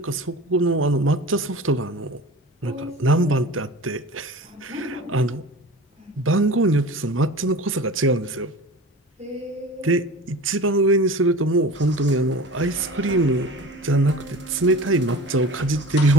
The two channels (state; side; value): normal; both; correlation 0.36